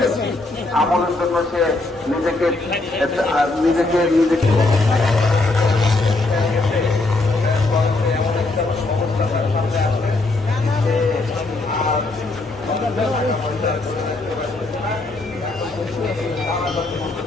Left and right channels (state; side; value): quieter; right; 3.1 dB